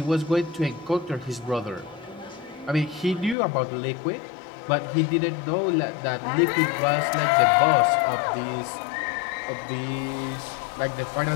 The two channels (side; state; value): right; drops out; at 3.4 s